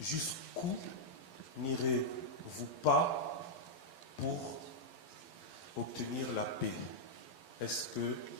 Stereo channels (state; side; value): late; right; 12 ms